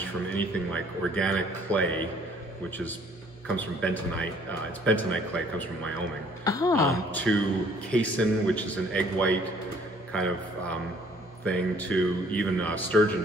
from anything like organic clay, which comes from bentonite. It's bentonite clay, it comes from Wyoming, to casein, which is an egg white kind of thing, to even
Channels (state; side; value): normal; both; correlation 0.59